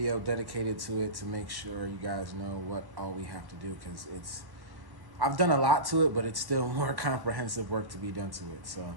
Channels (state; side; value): late; left; 1.1 ms